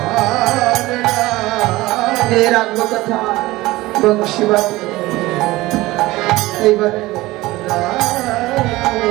এর আত্মকথা বংশীবাদ। এইবারে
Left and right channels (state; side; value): quieter; left; 18.9 dB